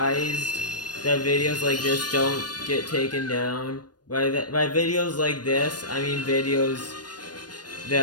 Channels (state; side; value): late; right; 0.69 ms